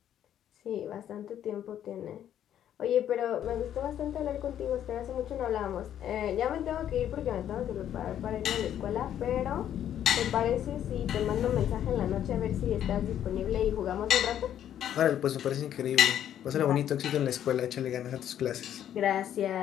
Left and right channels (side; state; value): right; quieter; 10.5 dB